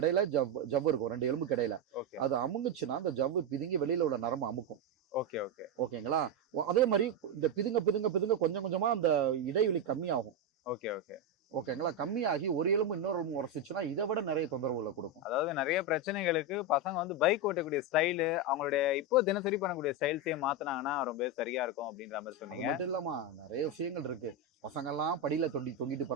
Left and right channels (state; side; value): normal; both; correlation 0.07